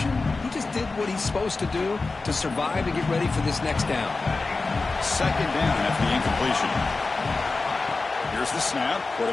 he just did what he's supposed to do to survive and get ready for this next down. 2nd down after the incompletion. Here's the snap.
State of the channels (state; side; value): quieter; right; 3.7 dB